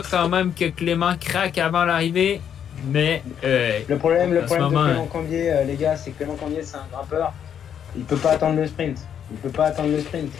quand même que Clément craque avant l'arrivée. Mais Le problème de moment, Clément Cambier, les gars, c'est que Clément Cambier, c'est un grimpeur. Il peut pas attendre le sprint.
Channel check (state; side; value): quieter; right; 8.7 dB